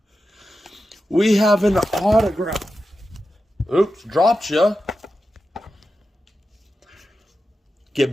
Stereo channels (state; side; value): normal; both; correlation 0.91